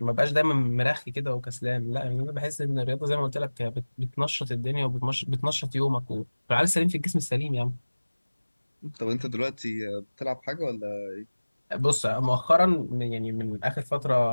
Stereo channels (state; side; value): inverted; both; correlation -1.00